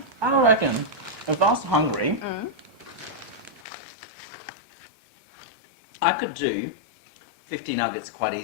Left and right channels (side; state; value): right; drops out; at 3.6 s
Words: I reckon if I was hungry, I could do 50 nuggets quite